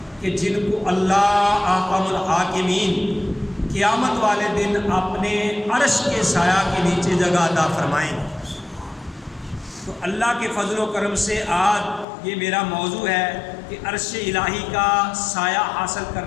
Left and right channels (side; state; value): right; drops out; at 12.1 s